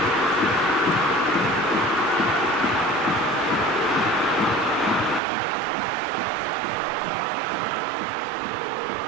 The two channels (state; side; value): drops out; left; at 5.2 s